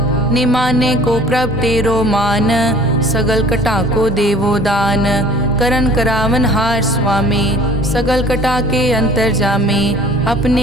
निमाने को प्रभ तेरो मान, सगल कटा को देवो दान। करन करावन हार स्वामी, सगल कटा के अंतर जामे।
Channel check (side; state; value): both; normal; correlation 0.49